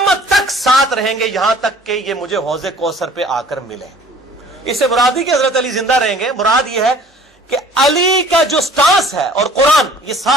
تک ساتھ رہیں گے یہاں تک کہ یہ مجھے حوض کوثر پہ آ کر ملے۔ اس سے مراد ہی کہ حضرت علی زندہ رہیں گے، مراد یہ ہے کہ علی کا جو سٹانس ہے اور قرآن یہ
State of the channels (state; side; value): normal; both; correlation 0.51